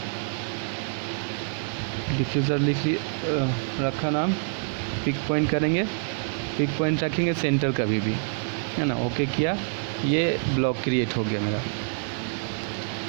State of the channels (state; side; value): silent; left; 61 dB below the other